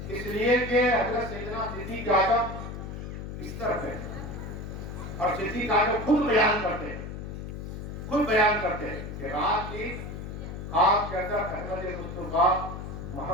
اس لیے کہ حضرت سیدنا صدیق اعظم اس طرف ہے، اور صدیق اعظم خود بیان کرتے ہیں، خود بیان کرتے ہیں کہ رات کی آپ کے اندر احمد مصطفیٰ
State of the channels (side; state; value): left; noise; hum, 8 dB below the sound